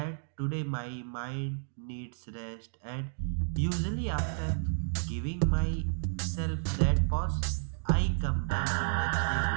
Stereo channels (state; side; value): silent; left; digital silence